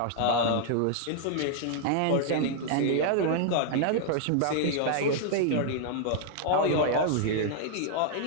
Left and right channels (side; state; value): both; different; correlation 0.00